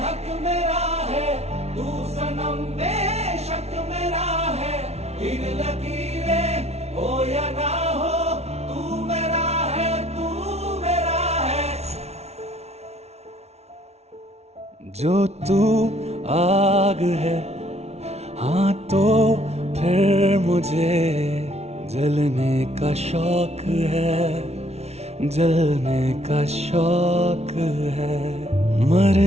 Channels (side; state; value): left; late; 0.31 ms